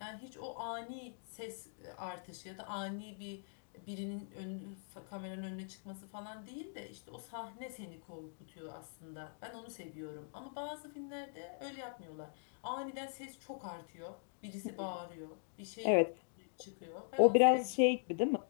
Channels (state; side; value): silent; right; digital silence